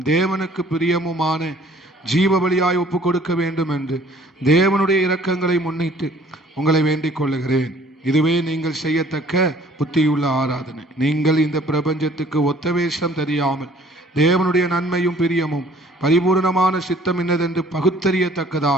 தேவனுக்கு பிரியமுமான ஜீவ பலியாய் ஒப்பு கொடுக்க வேண்டும் என்று தேவனுடைய இரக்கங்களை முன்னிட்டு உங்களை வேண்டிக் கொள்ளுகிறேன். இதுவே நீங்கள் செய்யத்தக்க புத்தியுள்ள ஆராதனை. நீங்கள் இந்த பிரபஞ்சத்துக்கு ஒத்த வேஷம் தெரியாமல் தேவனுடைய நன்மையும் பிரியமும் பரிபூர்ணமான சித்தம் என்னதென்று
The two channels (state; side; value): normal; both; correlation 0.56